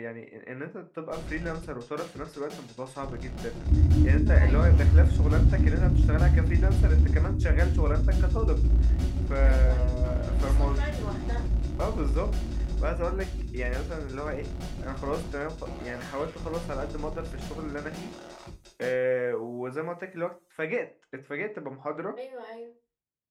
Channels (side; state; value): both; identical; correlation 1.00